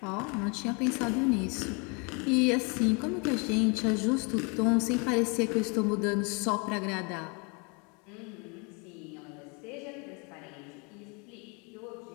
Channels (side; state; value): right; quieter; 32.3 dB